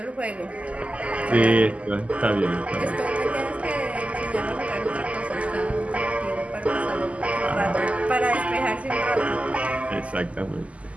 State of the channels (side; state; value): left; late; 0.065 ms